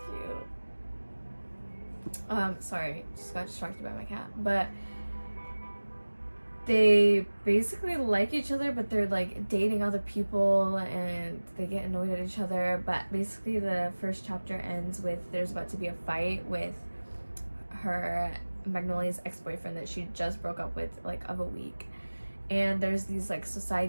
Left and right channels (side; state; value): both; inverted; correlation -1.00